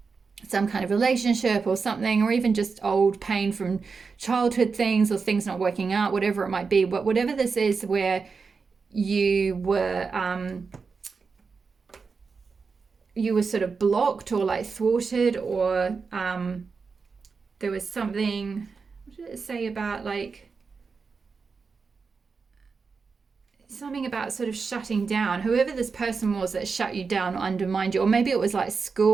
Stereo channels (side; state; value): left; quieter; 5.0 dB